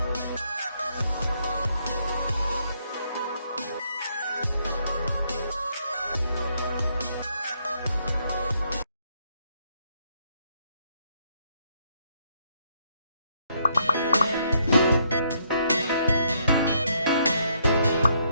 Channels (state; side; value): inverted; both; correlation -0.72